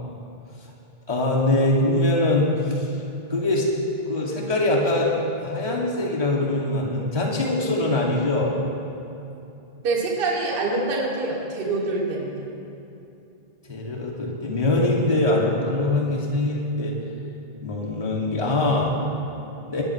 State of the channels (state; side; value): late; left; 1.2 ms